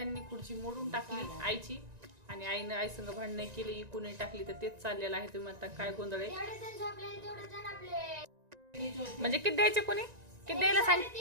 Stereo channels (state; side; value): late; left; 1.9 ms